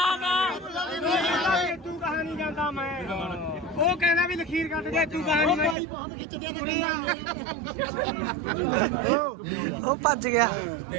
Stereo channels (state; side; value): drops out; left; at 5.8 s